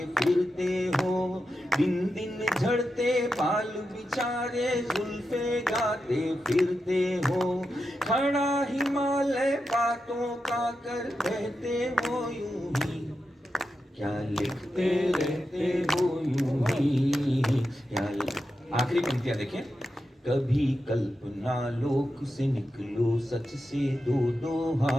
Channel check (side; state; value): both; normal; correlation 0.88